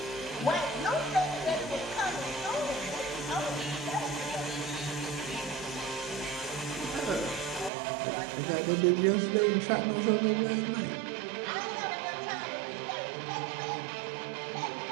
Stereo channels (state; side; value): drops out; left; at 7.7 s